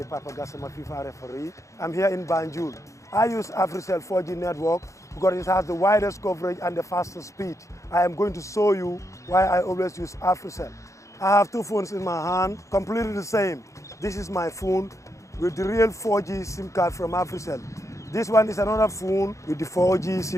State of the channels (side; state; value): right; late; 0.15 ms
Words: Papa Gassama, FIFA referee. I'm here in Banjul. I use Afeicell 4G network because it has the widest coverage and the fastest speed. I am going to show you why I always use Afeicell. I have two phones in my hand, completely the same. This is my phone with the real 4G SIM card from Afeicell. This one is another phone with the 4G